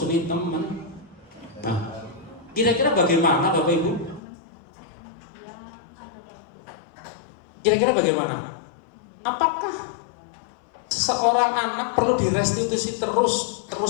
teman. Nah, kira-kira bagaimana Bapak Ibu? Kira-kira bagaimana? Apakah seorang anak perlu direstitusi terus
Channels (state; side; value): drops out; right; at 4.2 s